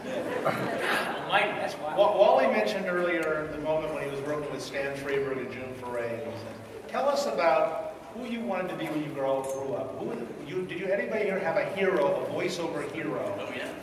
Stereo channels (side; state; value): both; identical; correlation 1.00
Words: Mike, that's why. Wally mentioned earlier the moment when he was working with Stan Freberg and June Foray. And he said, "Tell us about who you wanted to be when you grew up. Did anybody here have a hero, a voiceover hero?" Oh, yeah.